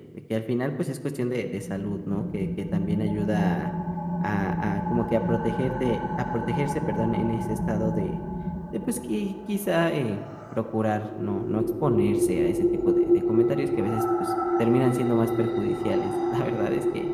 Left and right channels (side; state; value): both; identical; correlation 1.00